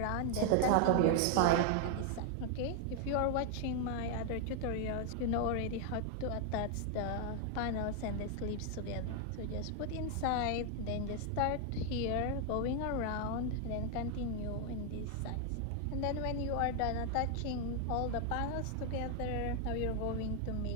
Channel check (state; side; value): different; both; correlation 0.00